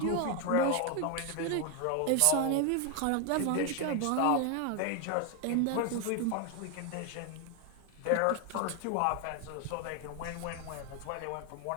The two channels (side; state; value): both; different; correlation 0.01